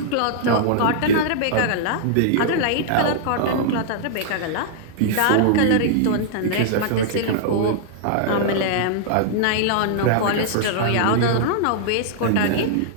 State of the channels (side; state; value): both; different; correlation -0.01